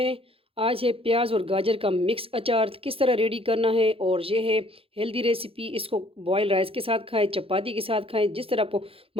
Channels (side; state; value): left; late; 0.27 ms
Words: आज है प्याज और गाजर का मिक्स अचार किस तरह रेडी करना है। और ये है हेल्दी रेसिपी। इसको बॉयल राइस के साथ खाएं, चपाती के साथ खाएं, जिस तरह आपको